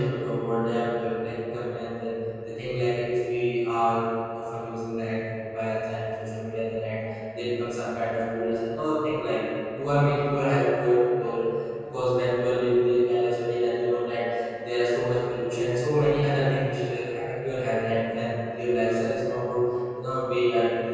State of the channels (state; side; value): identical; both; correlation 1.00